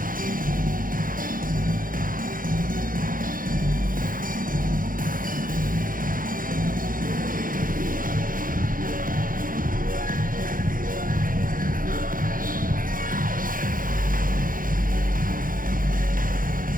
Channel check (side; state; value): left; late; 0.40 ms